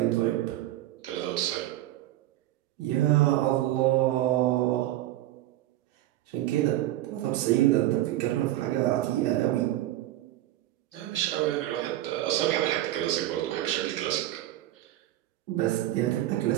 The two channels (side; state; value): left; quieter; 14.7 dB